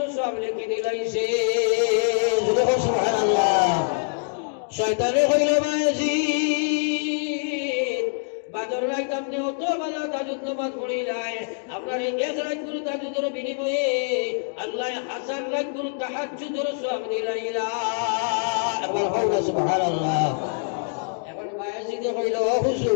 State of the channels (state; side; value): silent; right; digital silence